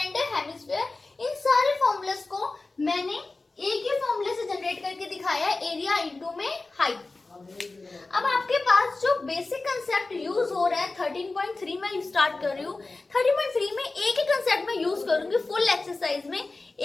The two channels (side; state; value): right; quieter; 3.4 dB